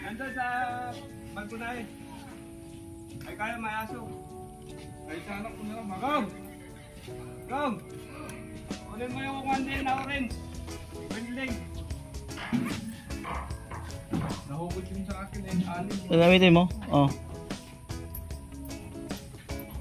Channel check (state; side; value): identical; both; correlation 1.00